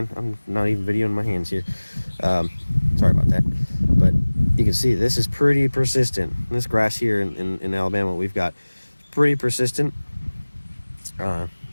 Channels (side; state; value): both; inverted; correlation -1.00